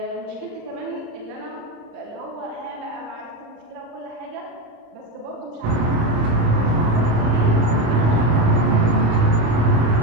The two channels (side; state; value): left; late; 26 ms